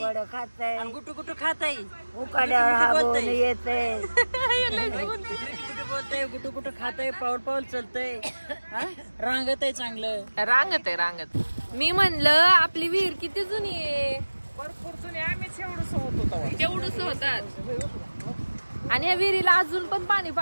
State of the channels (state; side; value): inverted; both; correlation -1.00